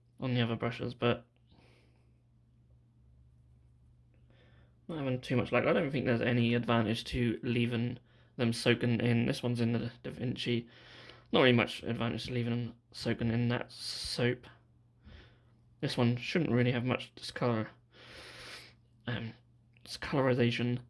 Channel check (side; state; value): both; identical; correlation 1.00